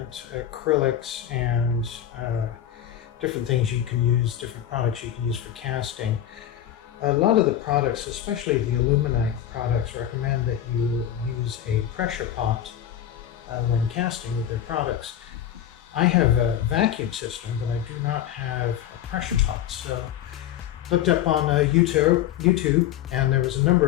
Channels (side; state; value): right; quieter; 10.8 dB